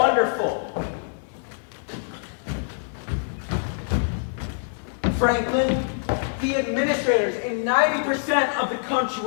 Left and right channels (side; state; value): right; silent; digital silence